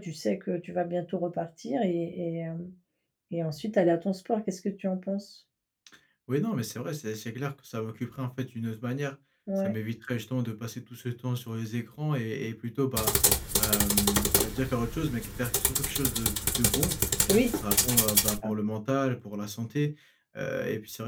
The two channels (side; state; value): both; identical; correlation 1.00